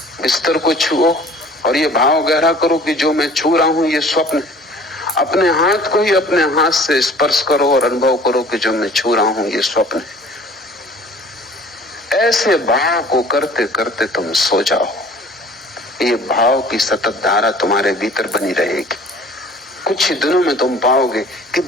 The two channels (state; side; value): normal; both; correlation 0.49